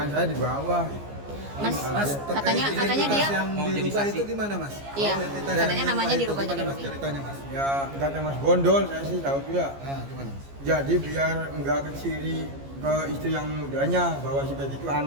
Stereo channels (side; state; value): left; late; 15 ms